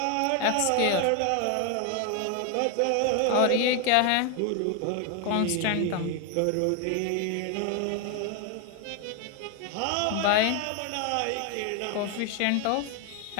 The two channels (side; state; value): both; different; correlation 0.01